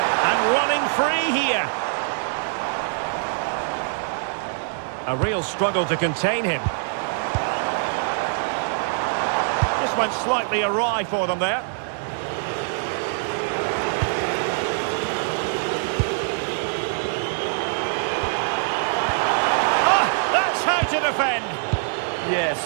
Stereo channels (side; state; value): left; silent; digital silence